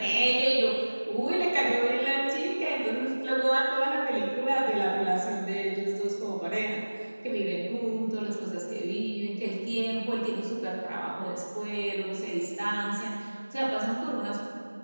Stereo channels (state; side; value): inverted; both; correlation -1.00